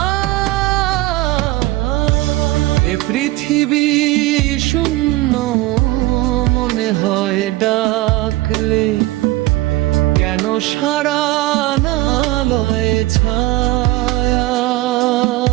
এ পৃথিবী শূন্য মনে হয় ডাকলে, কেন সারা না লয় ছায়ার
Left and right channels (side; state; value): left; quieter; 18.6 dB